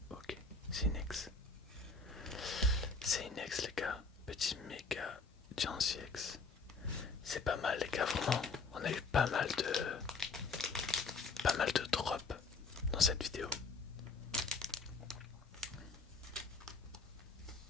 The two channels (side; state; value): right; quieter; 4.2 dB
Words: Ok, c'est une ex. C'est une ex les gars. Petit méga Jancy X. C'est pas mal les gars, vraiment. On a eu pas mal de drops dans cette vidéo.